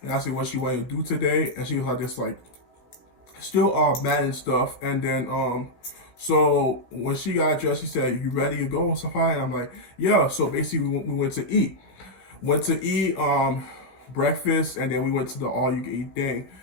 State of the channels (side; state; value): right; late; 16 ms